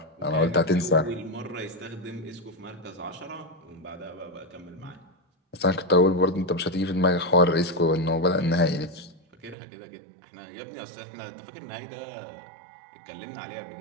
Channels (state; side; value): drops out; left; at 9.6 s